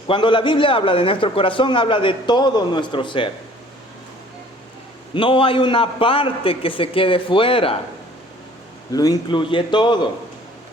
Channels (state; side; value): normal; both; correlation 0.53